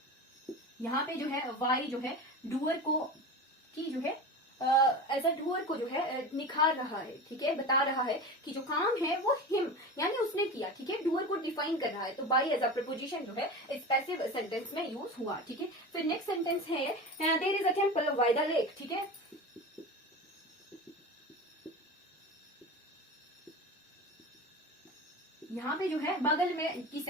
यहाँ पे जो है वाई जो है डूअर को की जो है एज अ डूअर को जो है निखार रहा है, ठीक है। बता रहा है कि जो काम है वो हिम यानी उसने किया, ठीक है। डूअर को डिफाइन कर रहा है, तो बाई एज अ प्रपोजिशन जो है इस पैसिव सेंटेंस में यूज हुआ, ठीक है। फिर नेक्स्ट सेंटेंस है there is a temple by the lake, ठीक है। यहाँ पे जो है बगल में की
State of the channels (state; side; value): normal; both; correlation 0.29